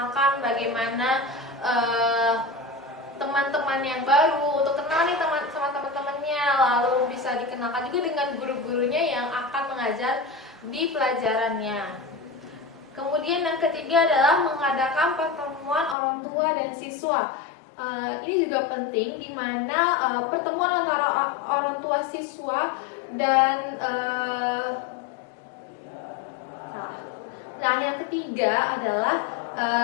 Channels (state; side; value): drops out; right; at 16.0 s